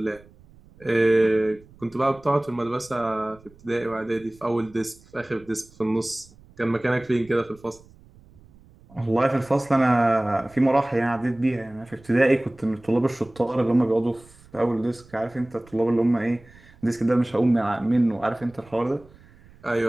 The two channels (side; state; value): right; noise; rumble, 26 dB below the sound